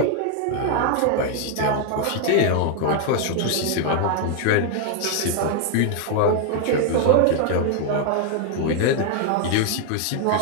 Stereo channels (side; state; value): both; different; correlation 0.00